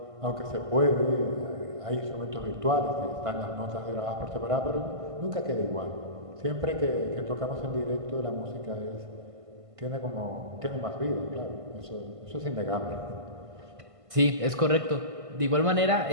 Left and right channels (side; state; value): left; late; 1.5 ms